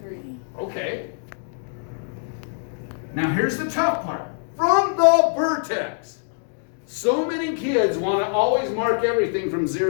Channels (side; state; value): right; silent; digital silence